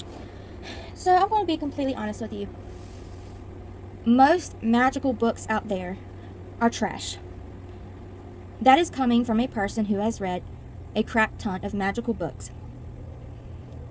So I'm going to be completely honest with you. Most magical books out there are trash. That is coming from a person who has read a crap ton of magical books.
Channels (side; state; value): both; identical; correlation 1.00